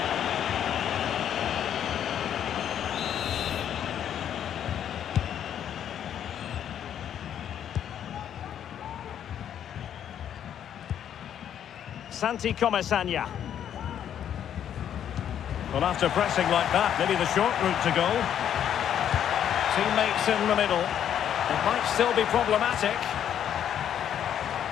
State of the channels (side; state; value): right; quieter; 9.6 dB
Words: Santi Comesaña. Well, after pressing like that, maybe the short route to goal. Teammates in the middle. It might still be problematic.